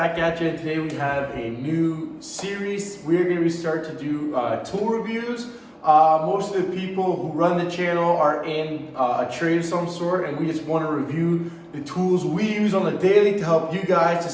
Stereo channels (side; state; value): both; identical; correlation 1.00